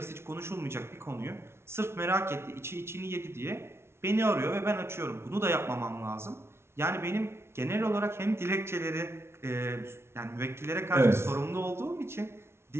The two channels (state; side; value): late; left; 0.12 ms